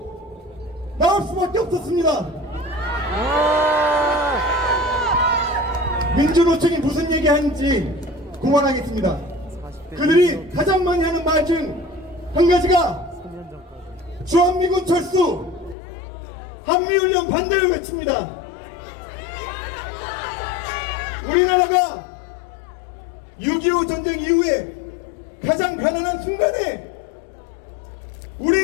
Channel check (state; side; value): drops out; right; at 15.8 s